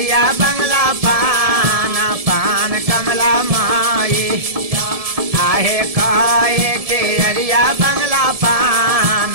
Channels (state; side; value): late; left; 1.7 ms